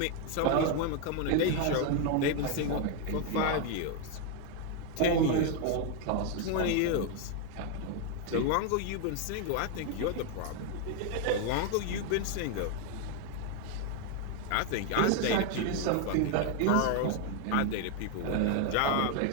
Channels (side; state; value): both; different; correlation 0.01